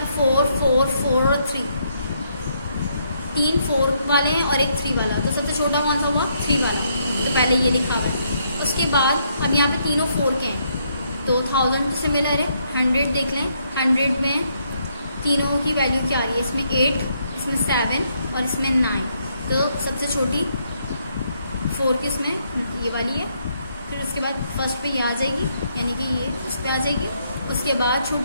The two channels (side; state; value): both; inverted; correlation -0.74